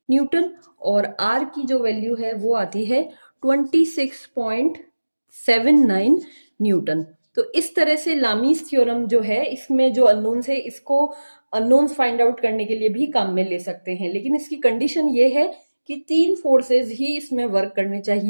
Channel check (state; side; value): inverted; both; correlation -1.00